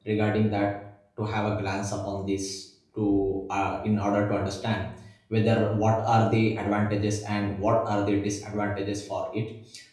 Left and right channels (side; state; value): both; identical; correlation 1.00